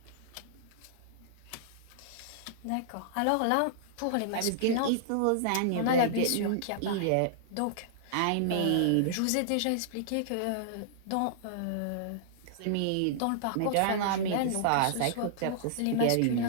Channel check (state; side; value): different; both; correlation -0.01